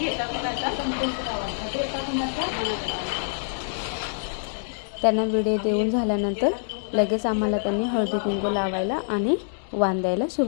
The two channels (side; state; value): right; silent; digital silence